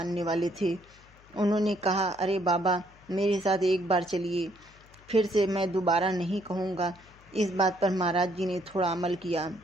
वाले थे। उन्होंने कहा, अरे बाबा, मेरे साथ एक बार चलिए, फिर से मैं दोबारा नहीं कहूँगा। इस बात पर महाराज जी ने थोड़ा अमल किया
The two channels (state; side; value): noise; left; hum, 26 dB below the sound